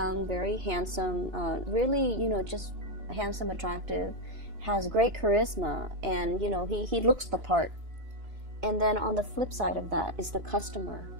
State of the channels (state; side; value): late; left; 2.9 ms